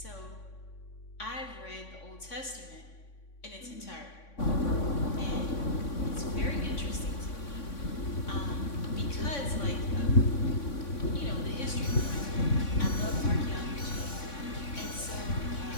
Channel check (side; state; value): right; late; 3.6 ms